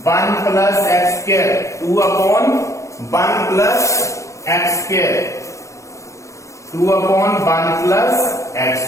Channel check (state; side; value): late; right; 0.15 ms